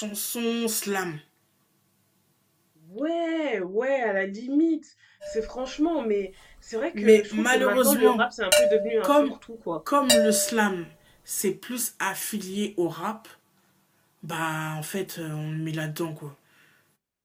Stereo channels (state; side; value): identical; both; correlation 1.00